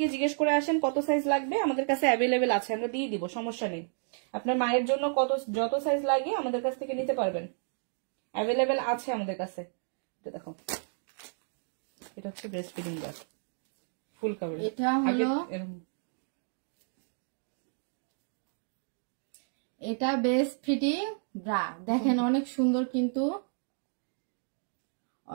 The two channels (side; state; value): left; silent; 57 dB below the other